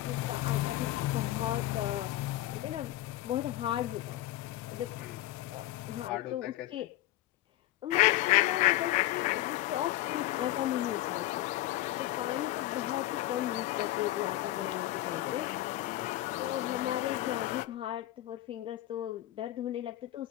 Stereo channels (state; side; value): quieter; right; 15.5 dB